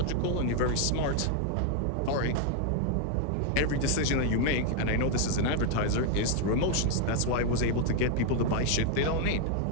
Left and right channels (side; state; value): both; different; correlation 0.01